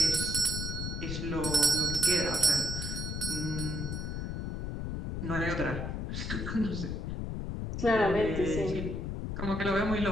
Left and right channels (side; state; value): left; noise; rumble, 3 dB below the sound